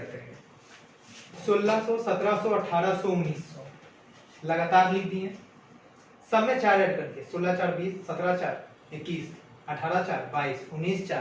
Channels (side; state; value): both; identical; correlation 1.00